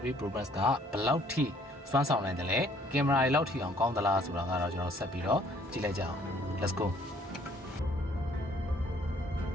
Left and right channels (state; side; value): normal; both; correlation 0.61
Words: Pro Max ကဘယ်လောက်ထိစွမ်းဆောင်နိုင်တယ်လဲကင်မရာတွေလောက်ထိအောင်ကောင်းသလားဆိုတာကတော့ကျွန်တော်ဆက်ပြီးတော့ကြည့်လိုက်ကြအောင် let's go